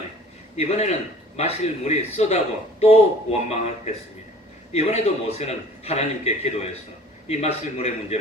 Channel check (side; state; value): both; normal; correlation 0.49